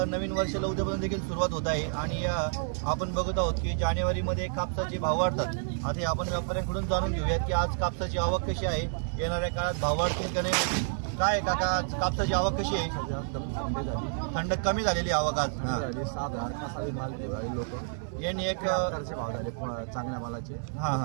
नवीन वर्षाला उद्यापासून देखील सुरुवात होत आहे आणि आपण बघत आहोत की जानेवारीमध्ये कापसाचे भाव वाढतात. आता आपण व्यापाऱ्यांकडून जाणून घेऊयात की आज कापसाची आवक कशी आहे, येणाऱ्या काळात भाव वाढतील का नाही. काय काका, आज कापसाची आवक कशी आहे? थंड कमी झालेली आवक आज. 7,000 कसावी माल दिवाळी लोक यांनी एक सरकारचे भाव झाले चांगल्या मालाचे.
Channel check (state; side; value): silent; left; digital silence